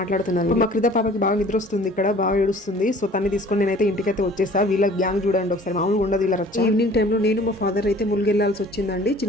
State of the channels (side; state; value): both; normal; correlation 0.50